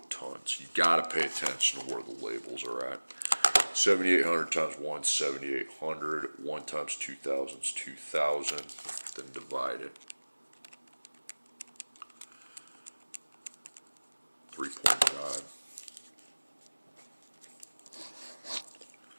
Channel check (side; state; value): both; inverted; correlation -1.00